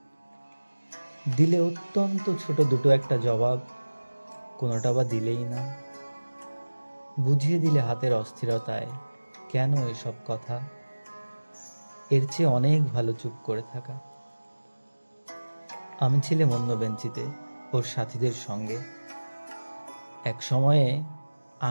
দিলে অত্যন্ত ছোট দুটো একটা জবাব, কোনোটা বা দিলেই না। বুঝিয়ে দিলে হাতের অস্থিরতায় কেন এসব কথা। এর চেয়ে অনেক ভালো চুপ করে থাকা। আমি ছিলাম অন্য বেঞ্চিতে ওর সাথীদের সঙ্গে। এক সময়ে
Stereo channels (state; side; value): inverted; both; correlation -1.00